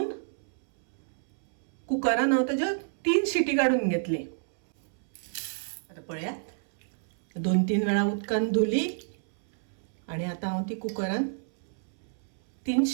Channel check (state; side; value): silent; left; 59 dB below the other